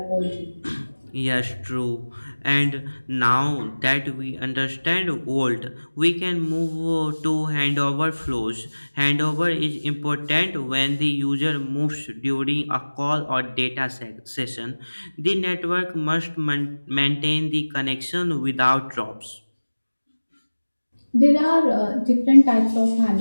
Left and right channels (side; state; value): both; inverted; correlation -1.00